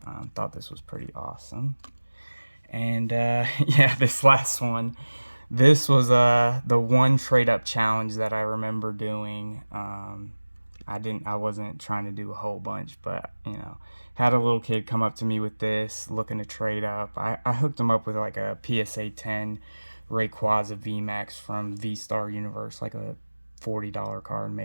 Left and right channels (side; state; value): both; inverted; correlation -1.00